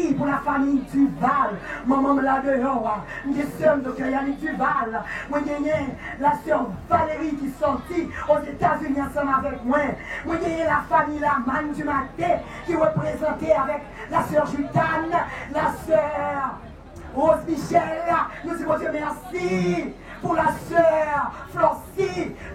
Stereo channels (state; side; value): identical; both; correlation 1.00